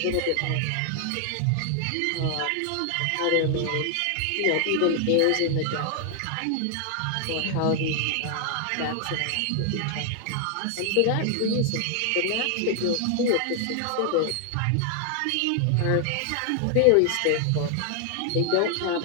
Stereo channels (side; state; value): both; different; correlation 0.00